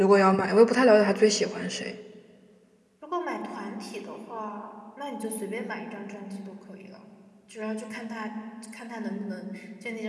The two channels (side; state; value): both; identical; correlation 1.00